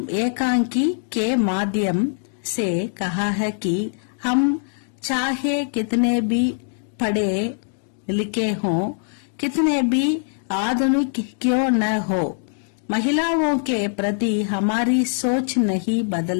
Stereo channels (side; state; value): right; silent; digital silence